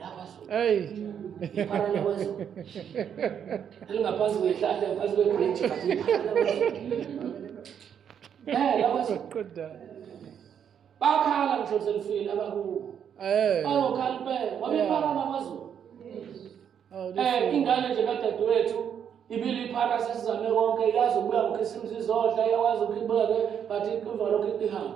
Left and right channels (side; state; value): left; quieter; 8.3 dB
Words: Hey. Iphara lakwaZulu. Elingaphansi kwehlahla ngaphansi kwebridge but iphara lakwaZulu. LakwaZulu. Good. Bakhala ngisho selifile abakubo. Bayokhala impela. Wabiphara lakwaZulu. Ingane nje kadadewethu ibili iphara sesizame konke yazi ukuya ngokhisimzi izodla yawazi ukubeke but iqhuvalo lokho